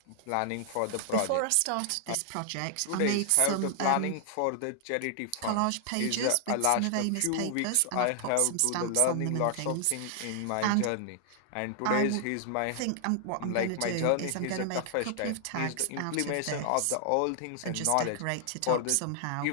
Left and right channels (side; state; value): both; different; correlation 0.00